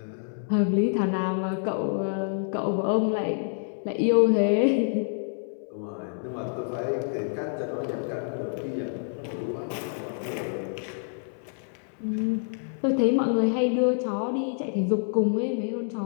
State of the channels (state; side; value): silent; right; 60 dB below the other